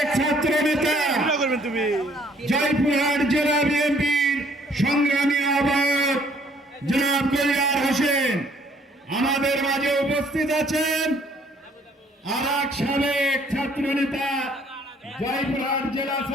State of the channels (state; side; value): normal; both; correlation 0.62